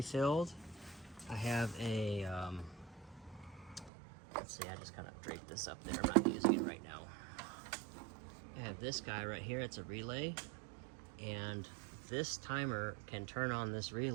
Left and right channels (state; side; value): drops out; left; at 3.9 s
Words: I have a, let's see, I just kind of draped this up there. I'm not using it right now. I have this guy right here. It's a relay, and this timer can turn on this